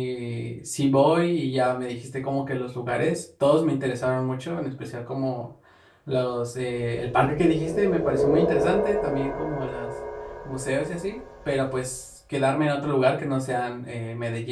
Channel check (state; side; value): identical; both; correlation 1.00